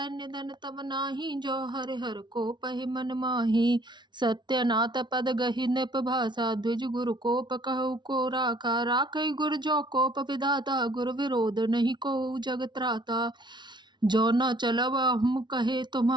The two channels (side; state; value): left; late; 0.22 ms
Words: निधन तब नाही, जो हरि हर को पहि मन माही। सत्यनाथ पद गहि नृप भाषा, द्विज गुरु कोप कहु को राखा। राखै गुर जो कोप विधाता, गुर विरोध नहीं को जग त्राता। जो न चलब हम कहे